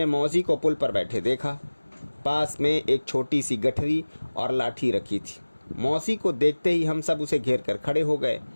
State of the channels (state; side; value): inverted; both; correlation -1.00